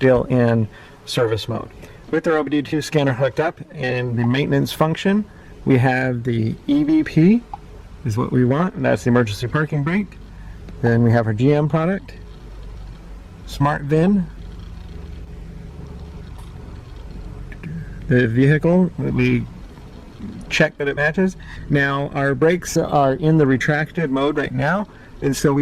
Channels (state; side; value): identical; both; correlation 1.00